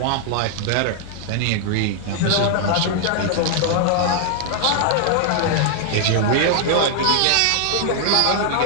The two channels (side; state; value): both; different; correlation 0.00